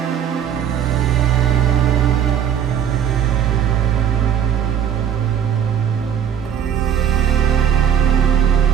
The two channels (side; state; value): left; quieter; 9.1 dB